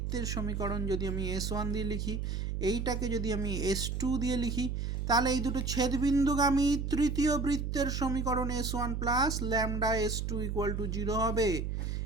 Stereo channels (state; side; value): noise; right; hum, 2 dB below the sound